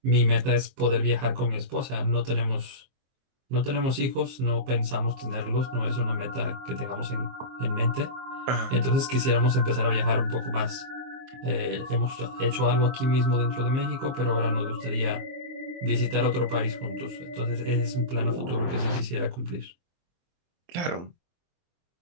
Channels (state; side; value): late; left; 23 ms